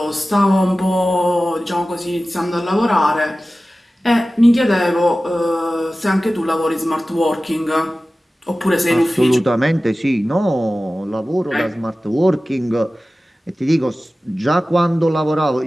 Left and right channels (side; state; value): both; normal; correlation 0.96